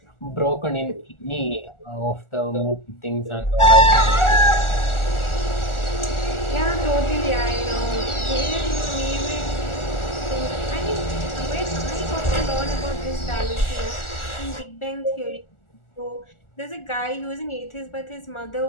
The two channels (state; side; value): late; right; 1.4 ms